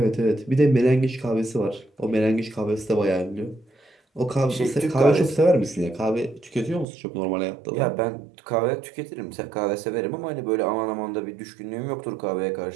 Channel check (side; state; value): left; drops out; at 6.9 s